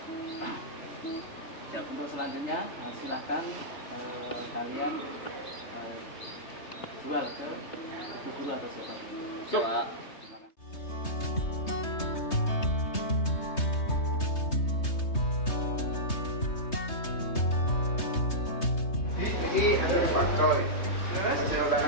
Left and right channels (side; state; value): right; late; 3.2 ms